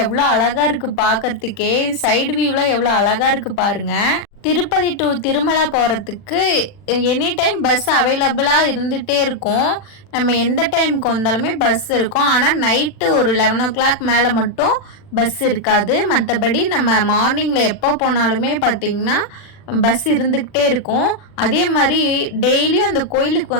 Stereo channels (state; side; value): late; right; 40 ms